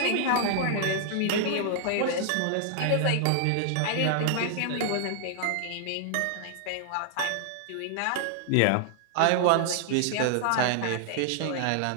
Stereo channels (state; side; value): different; both; correlation 0.00